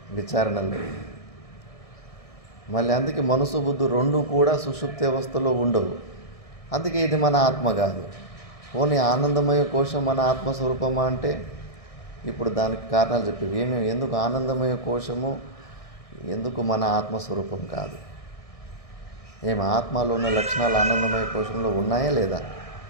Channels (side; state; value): right; late; 1.6 ms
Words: విచారణలు. మళ్ళీ అందుకే మనసు బుద్ధి రెండు కూడా సుషుప్తి అవస్థలో ఉండవు. అందుకే ఇది మన ఆత్మ కాదు. ఓన్లీ ఆనందమయ కోశం మన ఆత్మస్వరూపమా అంటే ఇప్పుడు దానికి కారణాలు చెప్పేవి. ఎందుకు ఆనందమయ కోశము, ఎందుకు మన ఆత్మస్వరూపం కాదు? ఆత్మలో ఉన్న లక్షణాలు ఆనందమయ కోశంలో ఉన్నాయా లేదా?